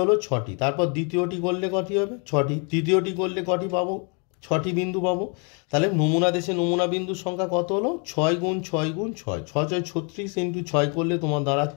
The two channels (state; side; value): quieter; right; 36.5 dB